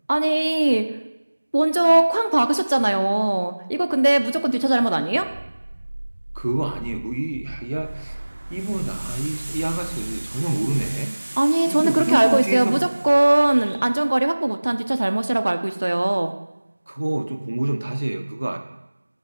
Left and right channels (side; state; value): both; inverted; correlation -1.00